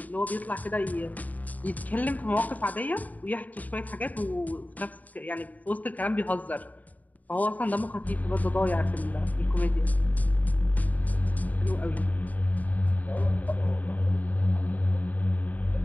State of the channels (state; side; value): late; right; 0.076 ms